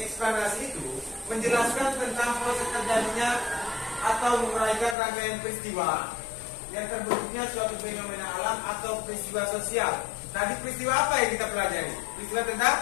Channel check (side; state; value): right; drops out; at 5.0 s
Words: itu menjelaskan tentang proses terjadinya atau menguraikan rangkaian peristiwa yang terbentuknya suatu fenomena alam atau peristiwa sosial. Tadi peristiwa apa yang kita pelajari? Peristiwa tentang